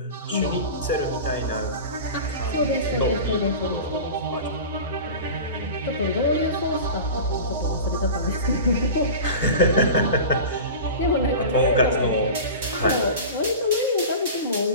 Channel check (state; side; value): inverted; both; correlation -0.32